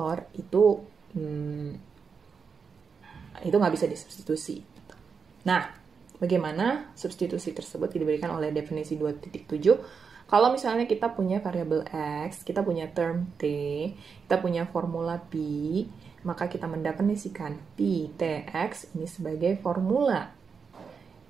itu nggak bisa disubstitusi. Nah, bagaimana substitusi tersebut diberikan oleh definisi 2.7? Kalau misalnya kita punya variabel X, kita punya term T, kita punya formula P, maka kita mendefinisikan P TX ini sebagai formula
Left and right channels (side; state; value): left; quieter; 5.8 dB